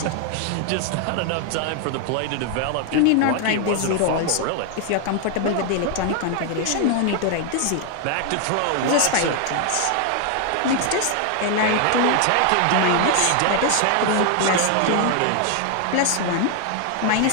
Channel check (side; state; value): both; different; correlation 0.00